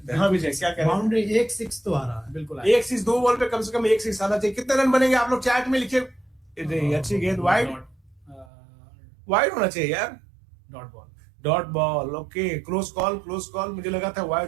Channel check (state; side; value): drops out; left; at 8.5 s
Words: हैं। हाँ विजय, क्या कह रहे हैं? बाउंड्री 1-6 तो आ रहा है। बिल्कुल एक 6 2 बॉल पे कम से कम 1 6 आना चाहिए। कितने रन बनेंगे आप लोग चैट में लिखे। अच्छी गेंद, वाइड होना चाहिए यार। Dot ball, okay. Close call. मुझे लगा था